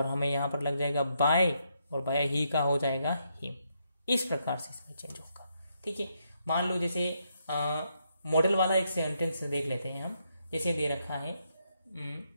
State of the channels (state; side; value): inverted; both; correlation -0.78